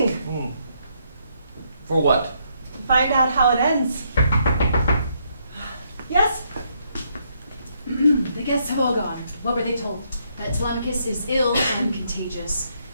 For what? to find out how it ends. Yes? The guests have all gone. What were they told? That Telemachus is ill and contagious.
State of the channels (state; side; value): inverted; both; correlation -0.74